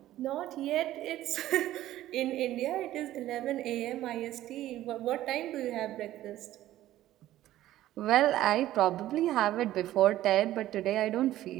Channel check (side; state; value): left; quieter; 14.1 dB